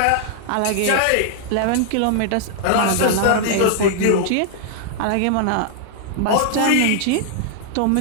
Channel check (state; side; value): different; both; correlation -0.01